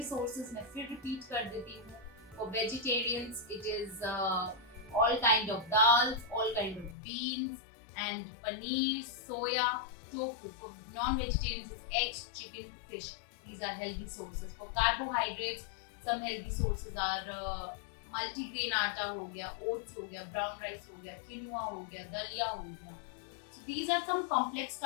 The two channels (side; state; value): right; drops out; at 7.0 s